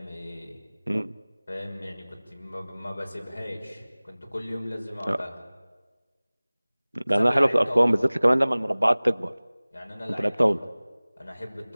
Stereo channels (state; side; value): inverted; both; correlation -1.00